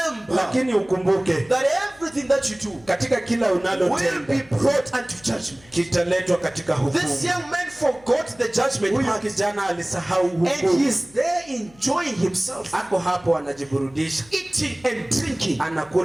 lakini ukumbuke, that everything that you do, katika kila unalotenda, will be brought unto judgment. Kitaletwa katika hukumu. This young man forgot the judgment. Huyu kijana alisahau hukumu. And he is there enjoying himself. Ako hapo anajiburudisha. Eating and drinking.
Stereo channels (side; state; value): left; noise; hum, 26 dB below the sound